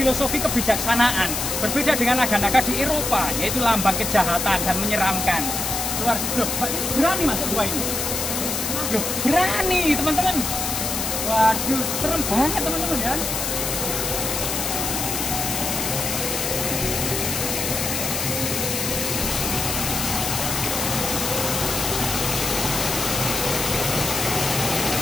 kebijaksanaan. Berbeda dengan naga-naga di Eropa, yaitu lambang kejahatan dan menyeramkan. Luar loh, Mbak Titi berani masuk gua ini? Loh, berani teman-teman. Waduh, serem banget teman-teman ya.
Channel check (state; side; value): noise; left; hiss, 2 dB below the sound